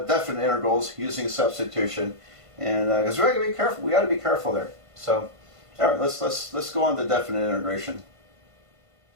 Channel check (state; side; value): late; left; 1.5 ms